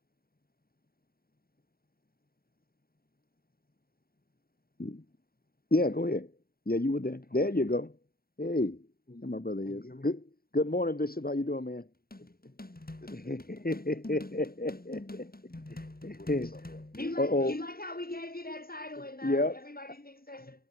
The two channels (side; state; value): right; late; 0.43 ms